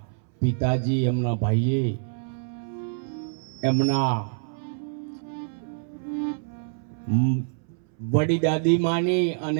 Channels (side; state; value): left; silent; 61 dB below the other